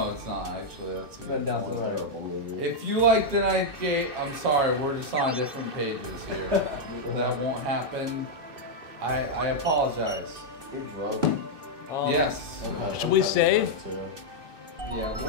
it's not actually. That's a Then good down to the right. Terrible movie. If you like the ninth gate, I'm sorry, we're just on different pages here. That won't happen. I apologize. You're drunk. Yes. Should we say? Yeah,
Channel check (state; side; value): late; left; 2.6 ms